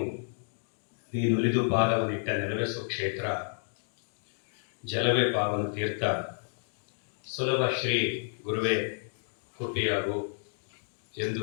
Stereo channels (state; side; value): silent; right; digital silence